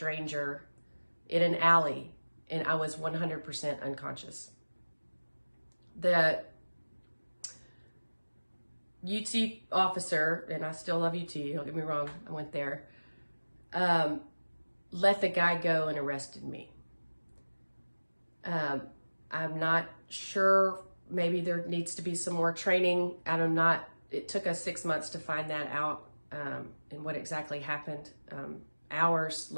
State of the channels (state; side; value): inverted; both; correlation -1.00